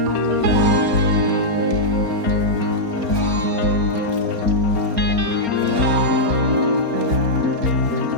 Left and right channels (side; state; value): left; late; 4.3 ms